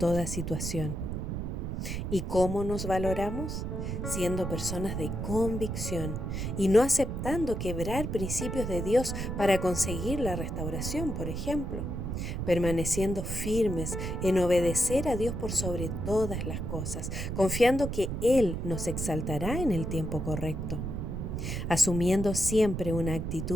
situación. ¿Y cómo nos valoramos? Siendo personas de convicción y no aceptando quebrar principios de Dios para conseguir la restauración, por ejemplo. Permaneciendo firmes en obedecer a Dios por sobre todas las cosas, confiando que Él nos exaltará en el tiempo correcto. Asumiendo siempre una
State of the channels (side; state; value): right; noise; rumble, 3 dB below the sound